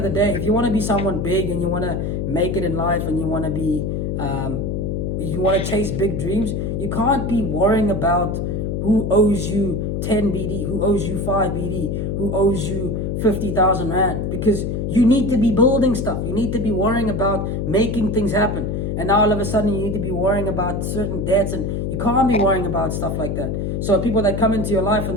the day, if you want to be someone big and you want to make it in life and you want to be you want to chase big dreams, you can't be worrying about who owes you 10 BD, who owes you 5 BD, who owes you 50,000 Rand, because you need to be building stuff. You need to be worrying about making things happen. And now all of a sudden you need to be worrying about certain debts, and you can't be worrying about stuff like that. So people that come into your life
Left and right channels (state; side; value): noise; left; hum, 1 dB below the sound